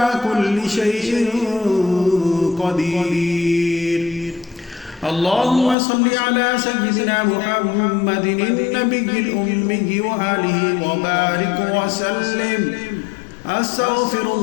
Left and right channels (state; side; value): drops out; right; at 5.8 s